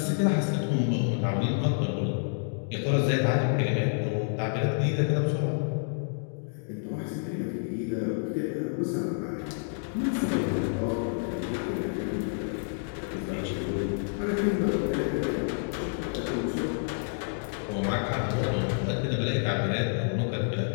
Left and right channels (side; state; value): right; silent; digital silence